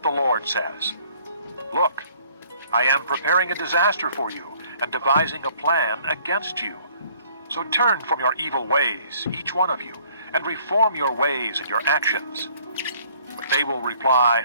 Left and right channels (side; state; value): both; inverted; correlation -0.59